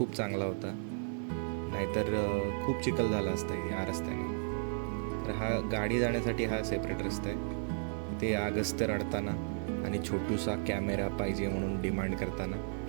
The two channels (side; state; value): left; silent; 55 dB below the other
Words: चांगला होता, नाहीतर खूप चिखल झाला असता या रस्त्याने. तर हा गाडी जाण्यासाठी हा सेपरेट रस्ता आहे. ते अगस्त्य रडताना आणि छोटूसा कॅमेरा पाहिजे म्हणून डिमांड करताना,